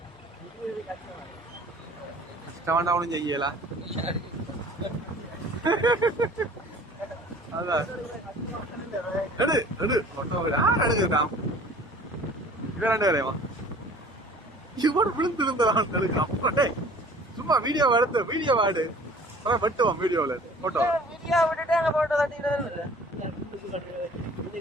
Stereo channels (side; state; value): both; normal; correlation 0.48